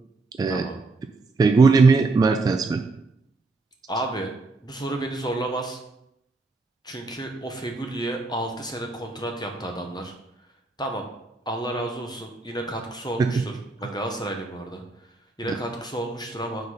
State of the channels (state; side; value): quieter; left; 3.5 dB